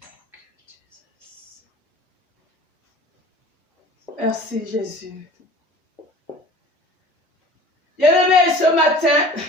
Merci Jésus. Bien-aimés, ce matin,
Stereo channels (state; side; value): normal; both; correlation 0.44